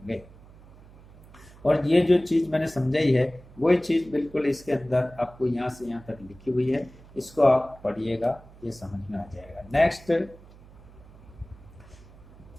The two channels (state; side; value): noise; right; hum, 22 dB below the sound